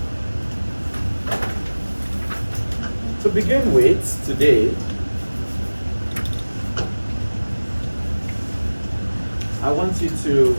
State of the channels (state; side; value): inverted; both; correlation -1.00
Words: To begin with, today, I want you to